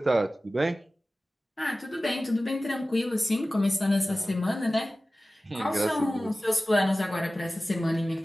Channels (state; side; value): normal; both; correlation 0.96